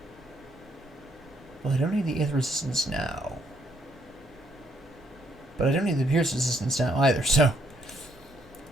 Well, I don't need the Aether resistance now. But I don't need the Pierce resistance now either, so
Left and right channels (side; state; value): both; normal; correlation 0.71